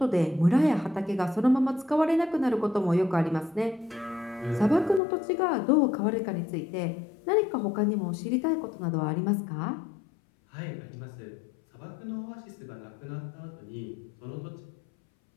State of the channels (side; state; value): right; drops out; at 5.0 s